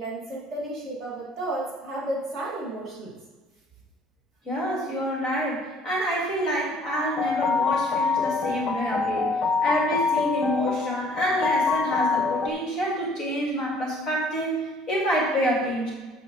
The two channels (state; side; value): normal; both; correlation 0.57